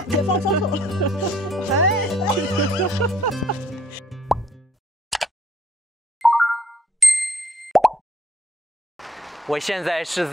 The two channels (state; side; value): normal; both; correlation 0.64